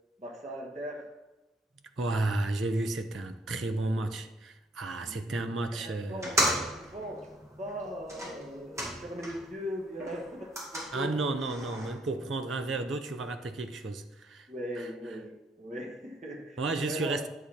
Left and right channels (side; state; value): both; normal; correlation 0.66